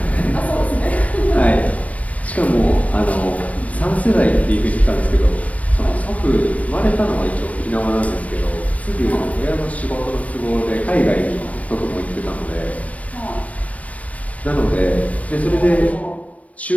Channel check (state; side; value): late; right; 0.067 ms